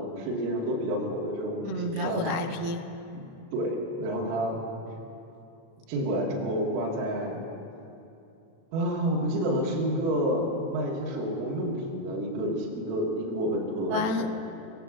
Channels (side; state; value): left; late; 36 ms